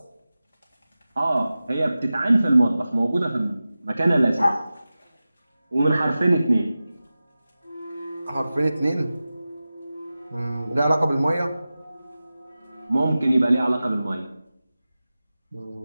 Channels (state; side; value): inverted; both; correlation -0.95